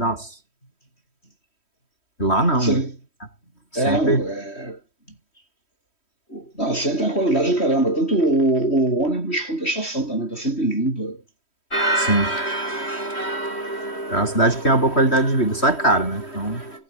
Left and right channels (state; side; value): late; right; 3.1 ms